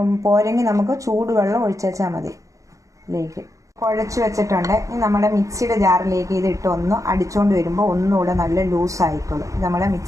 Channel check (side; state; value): left; late; 0.16 ms